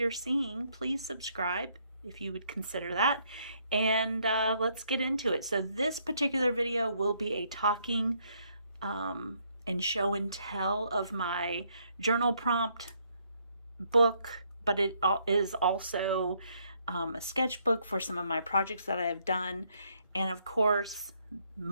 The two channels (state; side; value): inverted; both; correlation -0.71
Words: seeing, please subscribe if you would consider that. And let's get into it. So this particular video will be a talking and show and tell of my journal prompt book, but it is also a sketchbook for some of my projects that I have done. And of course,